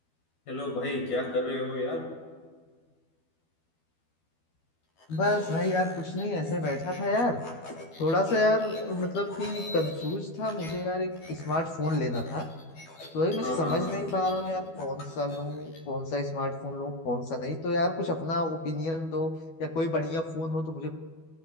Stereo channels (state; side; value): late; right; 12 ms